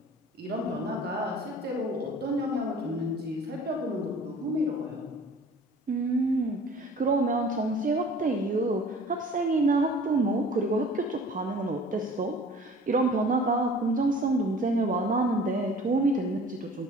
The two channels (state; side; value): normal; both; correlation 0.47